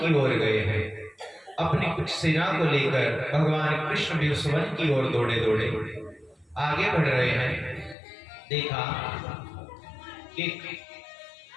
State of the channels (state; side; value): drops out; right; at 8.0 s